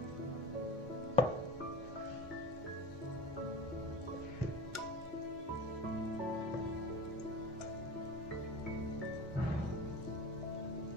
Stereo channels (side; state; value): both; normal; correlation 0.34